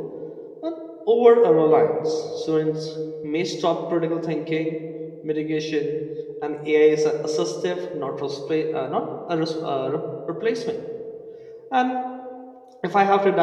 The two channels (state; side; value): identical; both; correlation 1.00